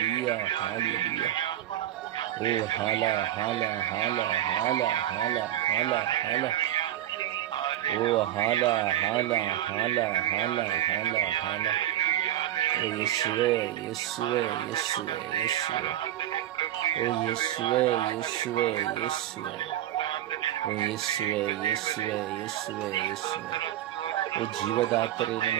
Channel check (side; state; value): left; quieter; 12.7 dB